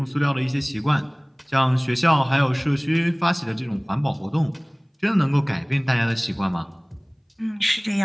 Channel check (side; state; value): both; identical; correlation 1.00